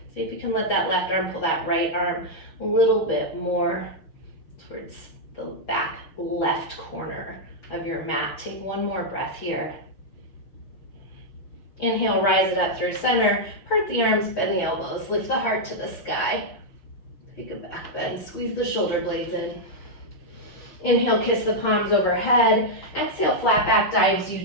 See if you can let that left arm pull that right arm a little bit more towards the back left corner of your mat. Take one more breath here. Inhale, rise it up through center. Part the arms, bend the elbows. Lift the heart to the sky. Take a back bend. Squeeze the shoulder blades in. Inhale, kiss the palms overhead. Exhale, flat back dives you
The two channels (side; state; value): right; late; 6.2 ms